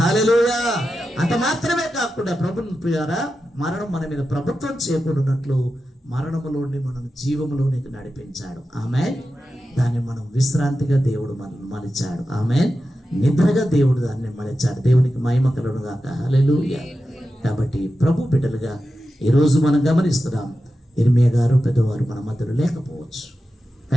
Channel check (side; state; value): both; normal; correlation 0.91